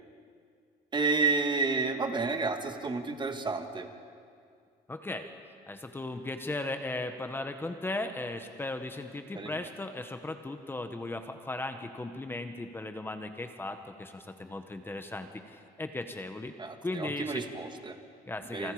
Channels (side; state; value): both; normal; correlation 0.34